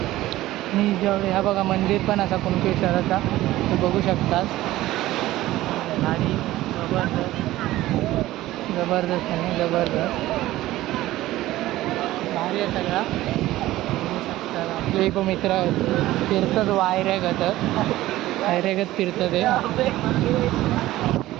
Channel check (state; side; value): quieter; left; 16.1 dB